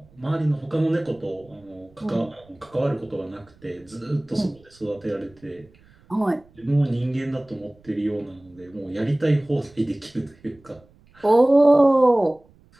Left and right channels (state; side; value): noise; right; rumble, 29 dB below the sound